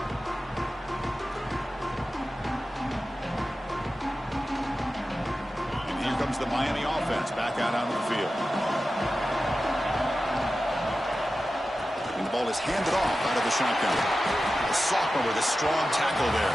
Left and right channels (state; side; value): normal; both; correlation 0.93